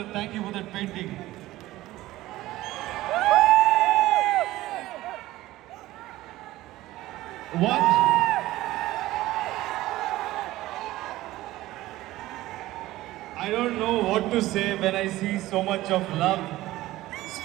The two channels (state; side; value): quieter; left; 16.7 dB